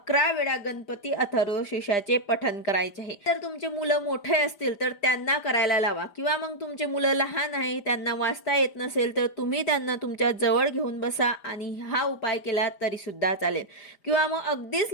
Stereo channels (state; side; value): late; right; 4.9 ms